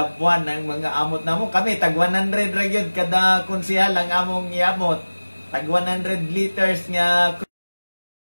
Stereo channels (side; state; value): both; inverted; correlation -1.00